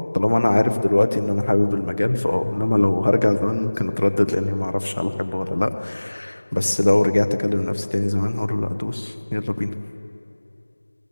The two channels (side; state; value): both; inverted; correlation -1.00